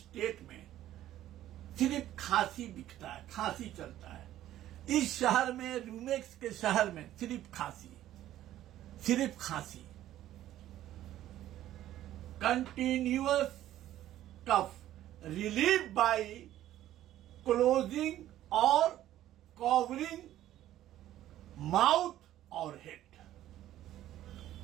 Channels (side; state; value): left; quieter; 13.1 dB